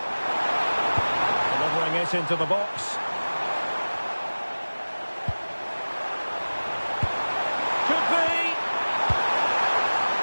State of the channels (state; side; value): inverted; both; correlation -1.00